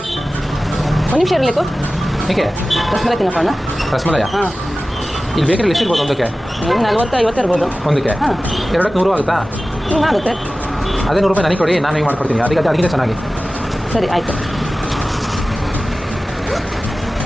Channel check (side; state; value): both; normal; correlation 0.96